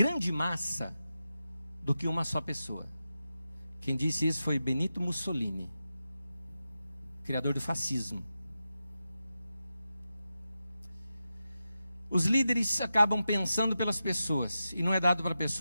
massa do que uma só pessoa. Quem disse isso foi Benito Mussolini, criador do fascismo. Os líderes acabam pensando pelas pessoas, e não é dado para a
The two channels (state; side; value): inverted; both; correlation -0.91